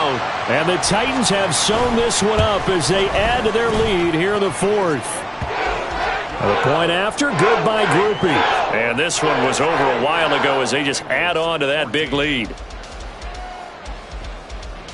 And the Titans have sewn this one up as they add to their lead here in the 4th. The point after, good by Grupe. And this one was over a while ago as they just add on to that big lead.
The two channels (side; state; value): both; identical; correlation 1.00